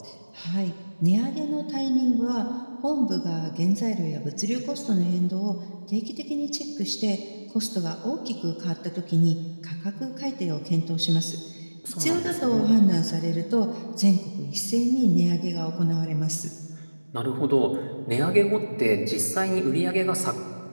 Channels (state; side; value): inverted; both; correlation -1.00